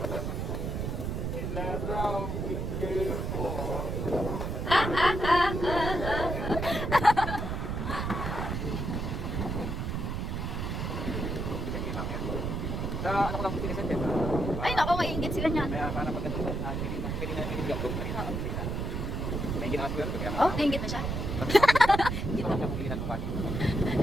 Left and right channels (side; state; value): right; noise; rumble, 2 dB below the sound